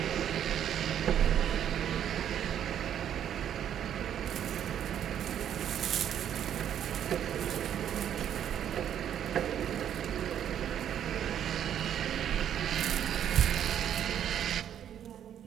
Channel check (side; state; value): left; quieter; 9.8 dB